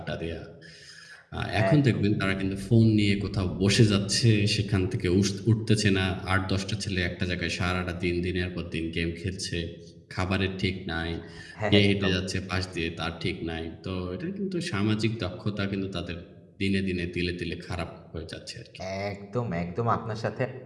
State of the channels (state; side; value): identical; both; correlation 1.00